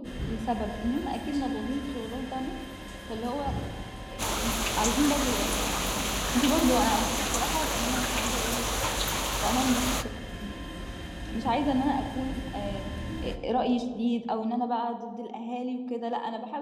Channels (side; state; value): both; identical; correlation 1.00